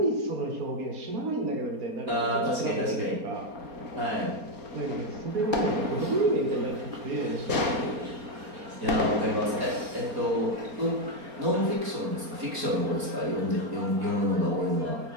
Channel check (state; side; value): late; left; 4.3 ms